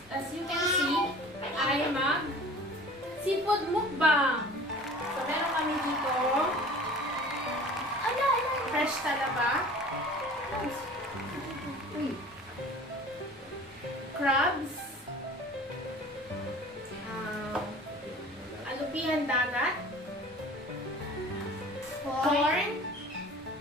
you can see, ay seafood mukbang. So, meron kami dito fresh talaba, crabs, alupihan dagat, corn,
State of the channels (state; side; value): normal; both; correlation 0.43